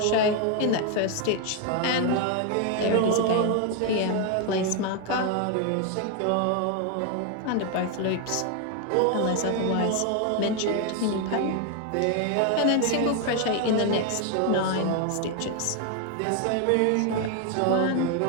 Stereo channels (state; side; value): different; both; correlation 0.01